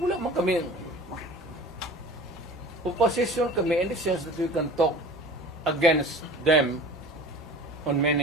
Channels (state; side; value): normal; both; correlation 0.41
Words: man kami opposition kami in the sense that we can talk against them on